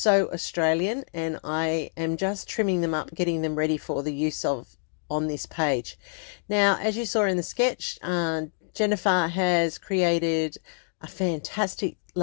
Australian, and I am just trimming them up, getting them ready for the use of on this page. Now, as you saw in the sketch, Jennifer has created a fantastic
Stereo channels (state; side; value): silent; right; digital silence